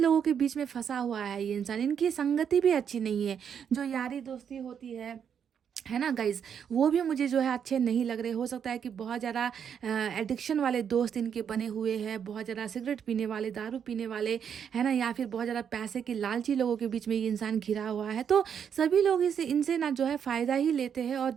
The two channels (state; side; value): quieter; left; 7.8 dB